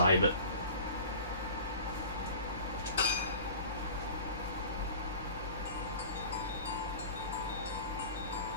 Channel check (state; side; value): inverted; both; correlation -0.40